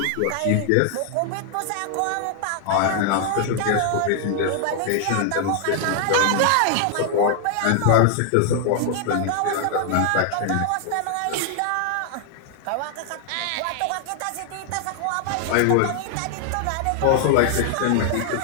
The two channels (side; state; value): both; different; correlation 0.00